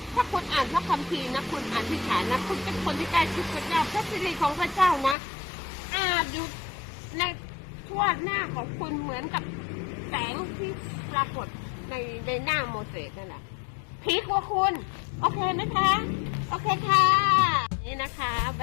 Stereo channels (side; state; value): right; drops out; at 5.2 s